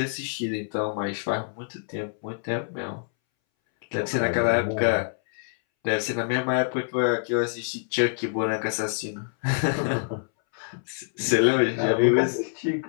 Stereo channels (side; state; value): right; silent; 61 dB below the other